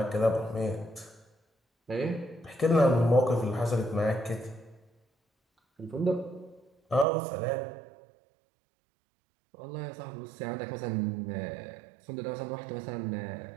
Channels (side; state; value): left; drops out; at 7.1 s